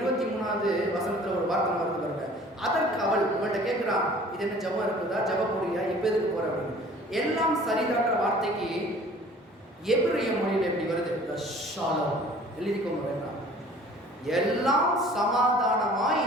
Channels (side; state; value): both; normal; correlation 0.50